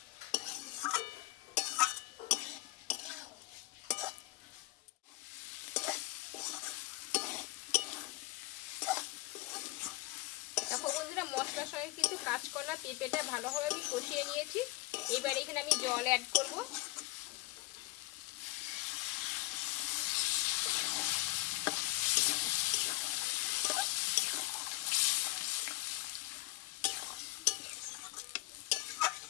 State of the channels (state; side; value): quieter; right; 20.2 dB